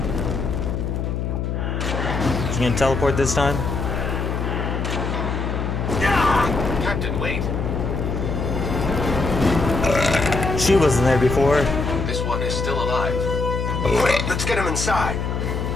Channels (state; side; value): noise; left; hum, 2 dB below the sound